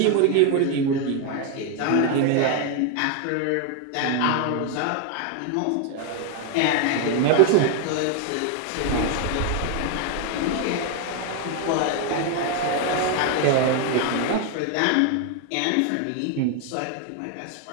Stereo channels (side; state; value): both; different; correlation 0.01